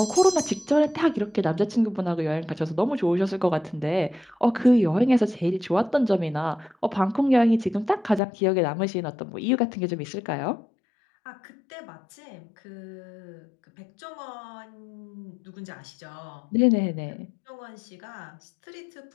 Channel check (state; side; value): drops out; right; at 8.2 s